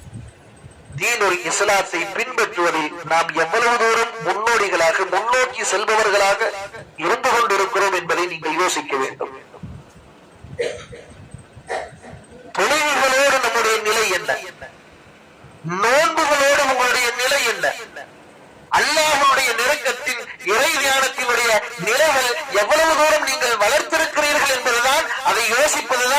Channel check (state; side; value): identical; both; correlation 1.00